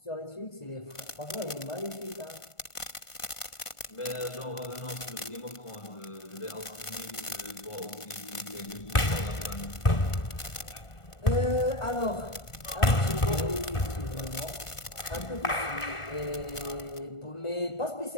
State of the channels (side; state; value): right; late; 1.5 ms